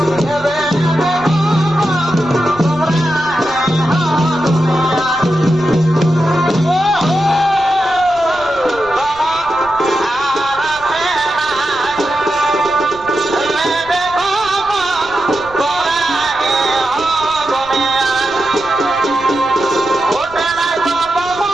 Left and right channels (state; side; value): noise; right; rumble, 20 dB below the sound